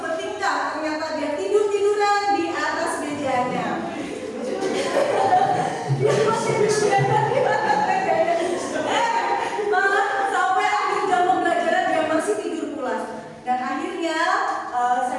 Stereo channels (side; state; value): both; identical; correlation 1.00